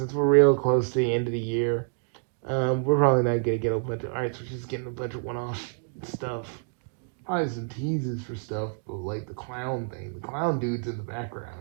real close to the end of the year, we're probably not gonna get a bunch of arcs. We're just getting a bunch of one-off stuff. Probably some teases for stuff, but like the clown thing, the clown dude's in the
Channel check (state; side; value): silent; left; digital silence